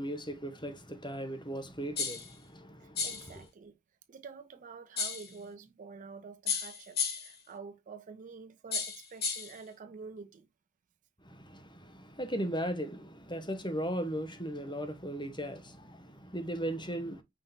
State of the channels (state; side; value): normal; both; correlation 0.42